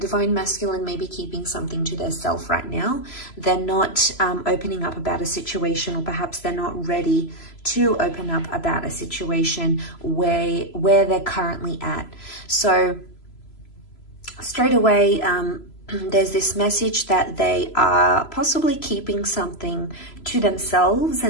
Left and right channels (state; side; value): late; right; 3.0 ms